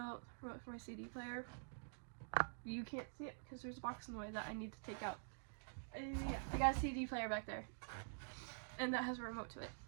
for my CD player. You can't see it because there's a box in the way that I need to take out. Yeah, I got a CD player back there, and that has a remote to it.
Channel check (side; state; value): left; silent; digital silence